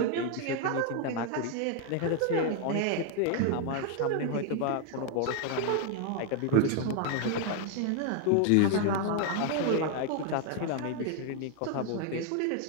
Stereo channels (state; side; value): different; both; correlation 0.00